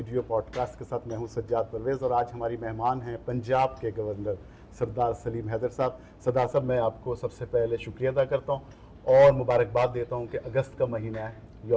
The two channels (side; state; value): both; identical; correlation 1.00